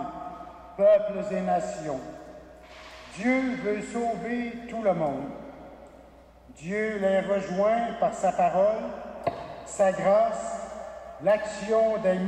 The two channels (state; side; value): identical; both; correlation 1.00